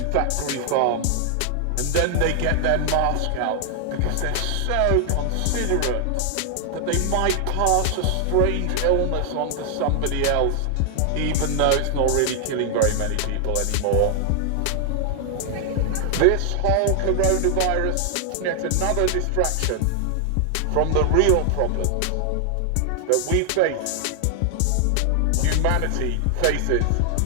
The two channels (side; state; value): both; different; correlation 0.00